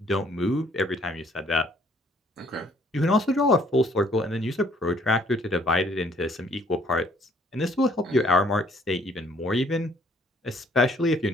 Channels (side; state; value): both; normal; correlation 0.62